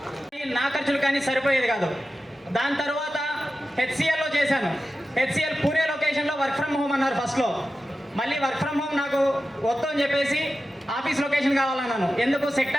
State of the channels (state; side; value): normal; both; correlation 0.93